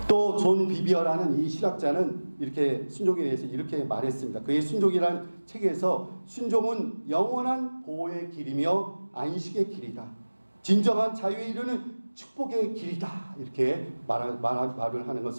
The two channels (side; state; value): both; inverted; correlation -1.00